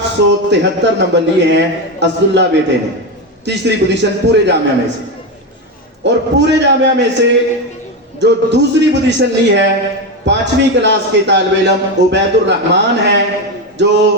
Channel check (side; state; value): both; normal; correlation 0.13